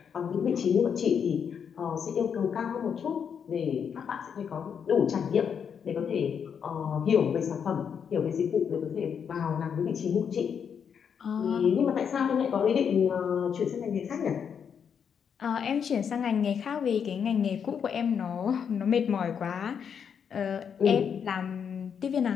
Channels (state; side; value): quieter; right; 7.3 dB